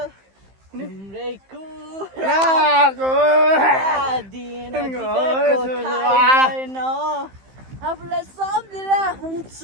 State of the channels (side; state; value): left; late; 15 ms